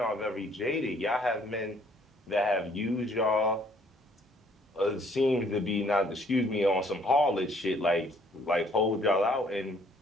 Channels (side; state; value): both; normal; correlation 0.61